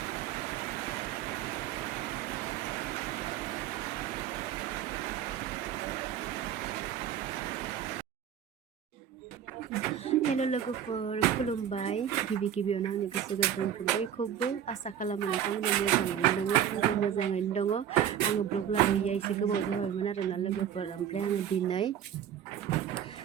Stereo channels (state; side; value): quieter; left; 9.5 dB